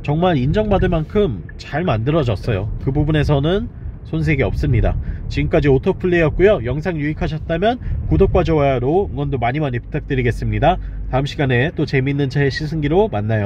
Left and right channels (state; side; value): identical; both; correlation 1.00